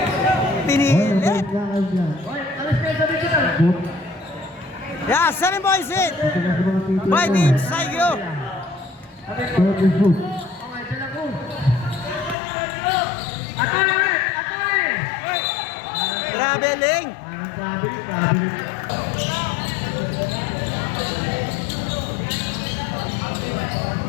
Pinilit. Oy, alis kayo sa digital. Yeah, 7 points hit Ito na sa mga titiro. by Team Saigyo. Third and shoot. Okay, De La Cruz. Atole ulit! Atole! Traveling. Parang traveling.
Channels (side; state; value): right; drops out; at 12.4 s